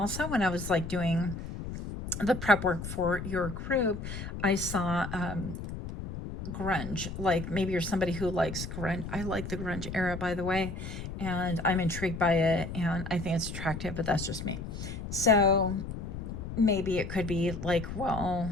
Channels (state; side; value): noise; left; rumble, 7 dB below the sound